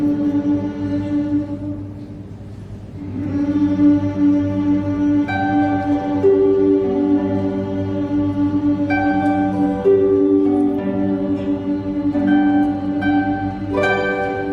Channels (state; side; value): identical; both; correlation 1.00